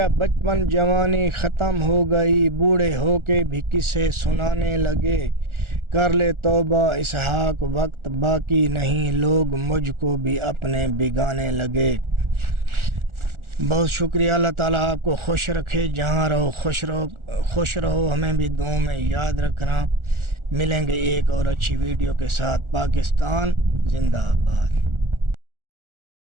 بچپن جوانی ختم ہو گئی، بوڑھے ہو کے بھی قصے سنانے لگے۔ کر لے توبہ اسحاق وقت باقی نہیں، لوگ مجھ کو بھی اپنے بگانے لگے۔ بہت شکریہ، اللہ تعالیٰ آپ کو خوش رکھے، جہاں رہو خوش رہو، ہمیں بھی دعاؤں میں یاد رکھنا۔ ملیں گے ایک اور اچھی ویڈیو کے ساتھ۔ پاکستان زندہ باد۔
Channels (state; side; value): late; left; 1.4 ms